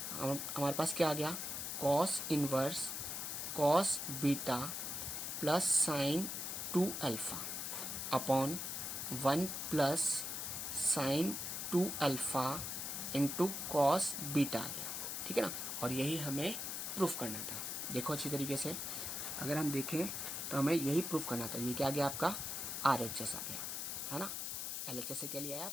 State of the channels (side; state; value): left; noise; hiss, 3 dB below the sound